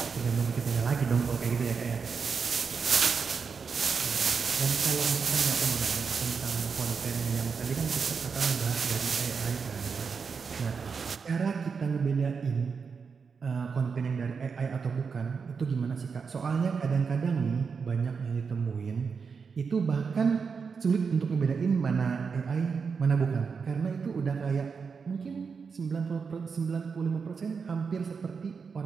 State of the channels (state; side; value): quieter; left; 5.6 dB